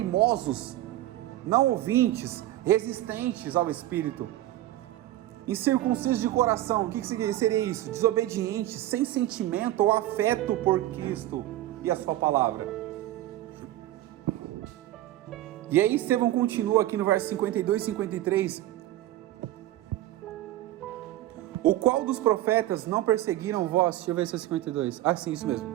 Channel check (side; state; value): left; quieter; 14.6 dB